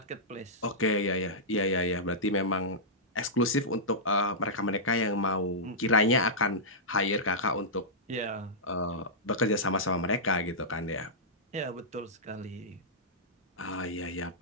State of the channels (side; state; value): both; normal; correlation -0.12